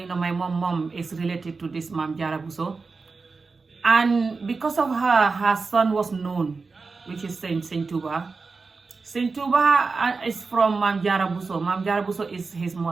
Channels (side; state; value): left; quieter; 4.3 dB